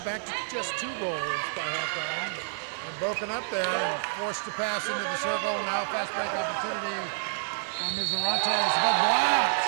back to just 2 goals by halftime. And broken up there, forced to pass into the circle. Now fast break opportunity for Mizarantes, but blocked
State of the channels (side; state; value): left; silent; 59 dB below the other